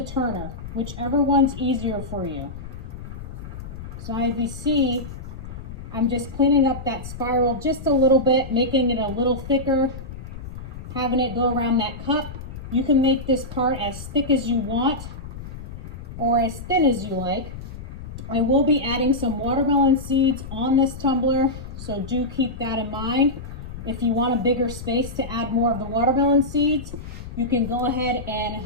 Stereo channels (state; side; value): noise; left; rumble, 11 dB below the sound